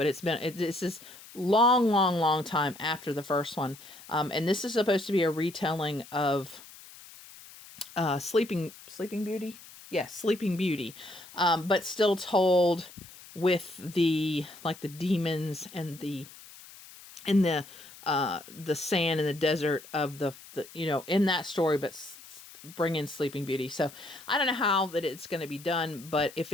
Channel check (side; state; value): left; noise; hiss, 19 dB below the sound